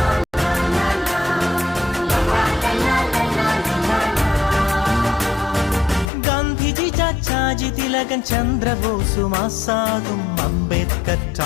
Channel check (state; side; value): drops out; right; at 6.1 s